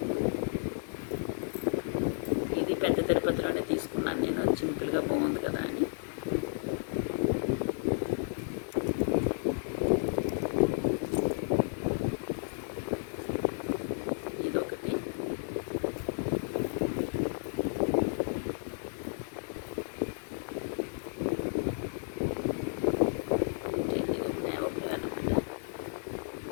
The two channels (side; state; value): right; silent; 56 dB below the other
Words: ఇది పెద్ద తిరుపతిలోనే తీసుకున్నాను నేను, సింపుల్గా బాగుంది కదా అని. ఇదొకటి.